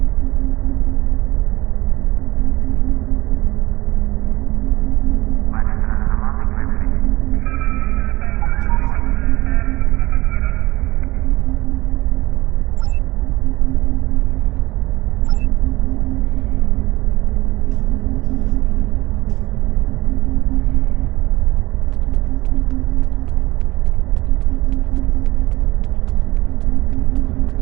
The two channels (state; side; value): quieter; left; 19.5 dB